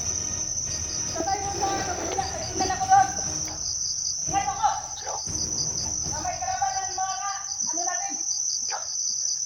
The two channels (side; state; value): both; identical; correlation 1.00